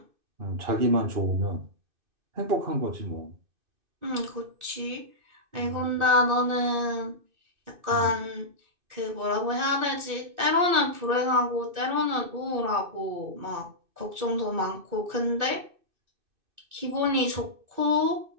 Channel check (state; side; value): late; left; 2.6 ms